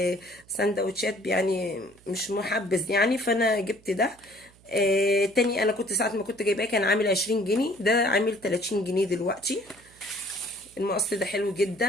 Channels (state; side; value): noise; right; hum, 28 dB below the sound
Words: يعني مش محبذ يعني، فانا جبت ده. تاني انا كنت ساعه ما كنت جايباه كان عامل 20 جنيه، ده عامل 30 جنيه دلوقتي. المقص ده حلو